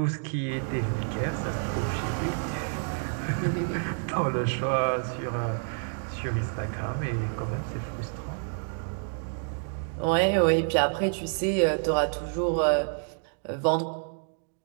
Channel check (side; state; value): left; silent; 59 dB below the other